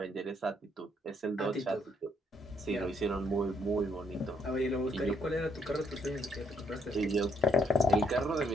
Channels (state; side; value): normal; both; correlation 0.73